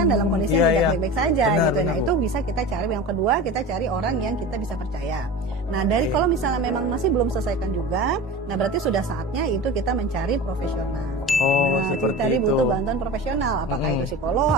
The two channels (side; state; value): both; normal; correlation 0.32